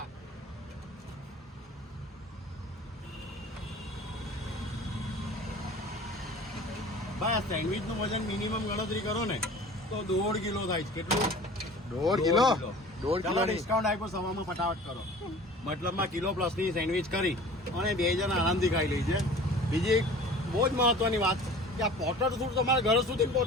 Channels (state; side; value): normal; both; correlation 0.43